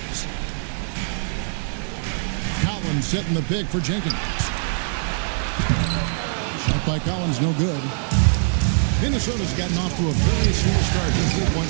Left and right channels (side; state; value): left; silent; digital silence